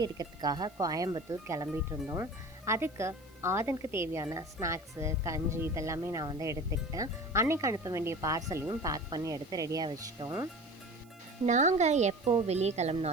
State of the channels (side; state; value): right; noise; hiss, 28 dB below the sound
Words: எடுக்கிறதுக்காக கோயம்புத்தூர் கிளம்பிட்டு இருந்தோம். அதுக்கு ஆதனுக்கு தேவையான ஸ்நாக்ஸு, கஞ்சி இதெல்லாமே நான் வந்து எடுத்துக்கிட்டேன். அன்னைக்கு அனுப்ப வேண்டிய பார்சலையும் பேக் பண்ணி எடுத்து ரெடியாக வச்சிட்டோம். நாங்கள் எப்போ வெளியே